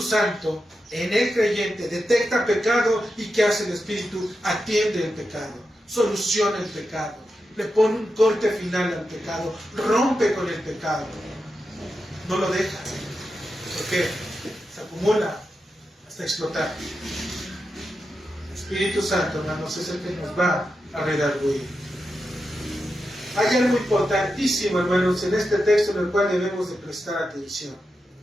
Santo en el creyente detecta pecado y ¿qué hace el Espíritu? Atiende el pecado, soluciona el pecado, le pone un corte final al pecado, rompe con el pecado, no lo deja, porque se acumula hasta explotar. El Espíritu Santo, hermanos, es el que nos va a redarguir. Hay algo importantísimo, hermanos, en este texto en el cual debemos de prestar atención.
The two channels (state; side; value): normal; both; correlation 0.88